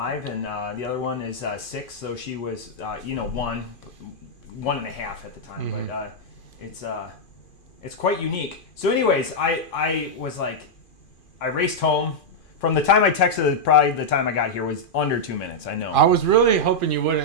and the other one is 6. So she was, 1.5 at the time. Mm-hmm. But it's quite unique. So anyways, I was like, I raced home. From the time I texted, probably the time I got here was under 2 minutes. I know. I was really hoping you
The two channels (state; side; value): late; right; 2.5 ms